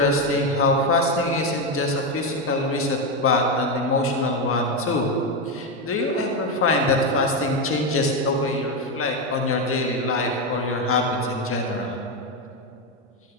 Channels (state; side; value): normal; both; correlation 0.09